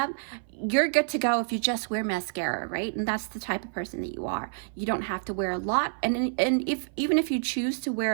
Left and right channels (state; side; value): silent; left; 57 dB below the other